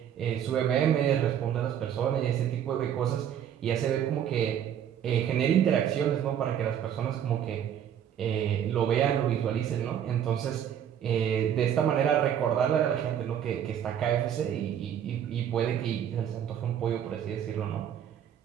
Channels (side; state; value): left; quieter; 9.5 dB